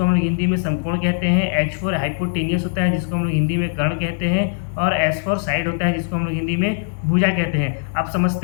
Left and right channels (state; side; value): silent; right; digital silence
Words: हम लोग हिंदी में समकोण कहते हैं, H4 हाइपोटेनियस होता है जिसको हम लोग हिंदी में कर्ण कहते हैं, और S4 साइड होता है जिसको हम लोग हिंदी में भुजा कहते हैं। अब